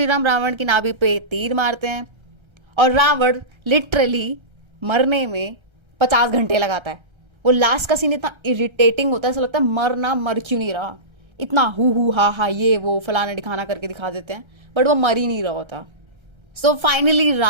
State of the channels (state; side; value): late; left; 1.3 ms